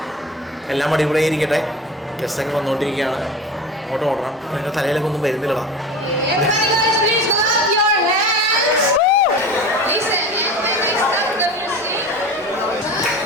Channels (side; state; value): both; normal; correlation 0.33